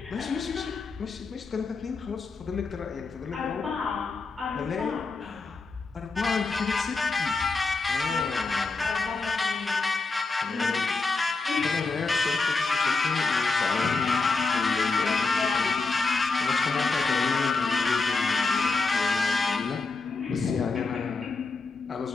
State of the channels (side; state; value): right; quieter; 4.0 dB